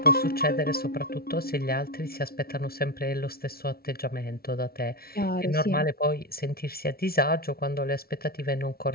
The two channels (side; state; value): right; late; 0.44 ms